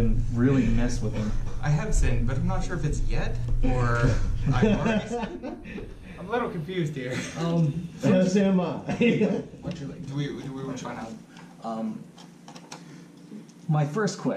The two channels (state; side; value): identical; both; correlation 1.00